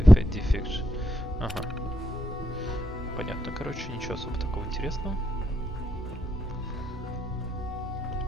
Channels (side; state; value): both; normal; correlation 0.81